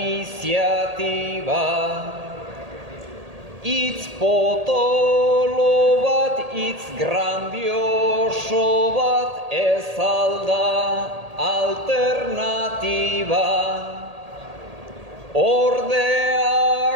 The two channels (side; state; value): left; late; 1.8 ms